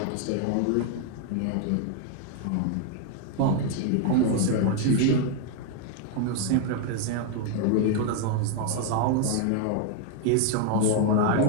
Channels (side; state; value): both; different; correlation 0.00